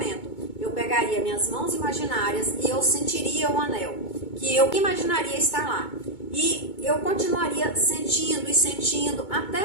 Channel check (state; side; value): late; right; 2.2 ms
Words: Eu pegaria minhas mãos imaginárias e eu sentiria o anel, que eu imaginaria estar lá. E eu continuaria sentindo e sentindo